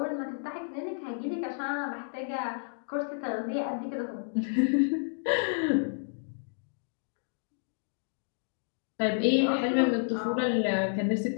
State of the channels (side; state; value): right; silent; digital silence